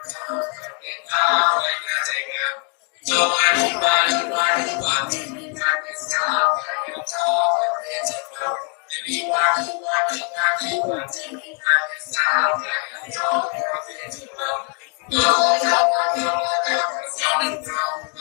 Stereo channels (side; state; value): right; quieter; 35.9 dB